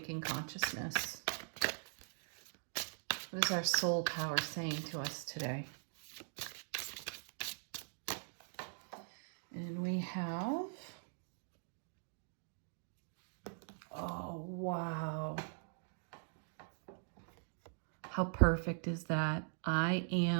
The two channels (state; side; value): silent; left; digital silence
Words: consciousness? What is our soul power saying to us today? And we have, oh, wow. How perfect is that? I